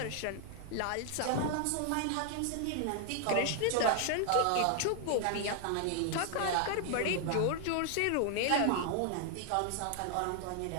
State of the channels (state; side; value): different; both; correlation 0.00